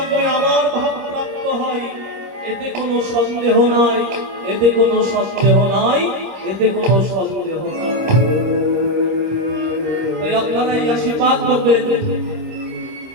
আমার ভাব প্রাপ্ত হয়, এতে কোনো সন্দেহ নাই, এতে কোনো সন্দেহ নাই, এতে কোনো সন্দেহ নাই। তাই আপনারা এই আশীর্বাদ করবেন,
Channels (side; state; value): left; late; 26 ms